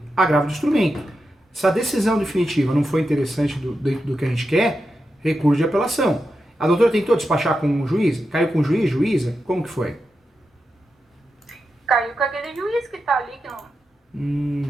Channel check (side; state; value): both; normal; correlation 0.88